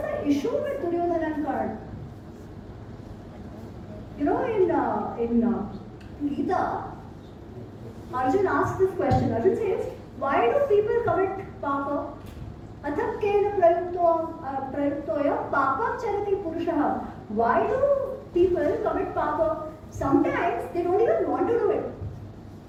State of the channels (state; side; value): identical; both; correlation 1.00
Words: the issue with Duryodhana and Karna? You know, in Gita, Arjun asks this question. Arjun says, why do people commit papa? Athakkena prayuktoya papam charati purushaha. Why do people commit papa? Sometimes they don't even want to do it.